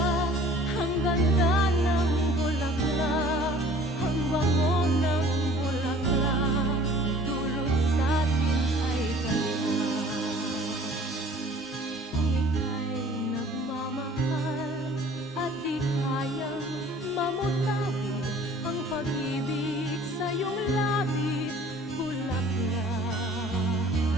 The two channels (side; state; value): both; normal; correlation 0.50